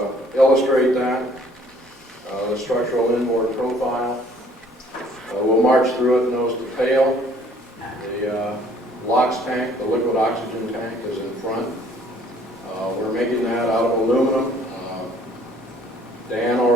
illustrate that, the structural inboard profile. We'll march through it nose to tail. The LOX tank, the liquid oxygen tank, is in front. We're making that out of aluminum. Dan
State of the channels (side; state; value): both; normal; correlation 0.58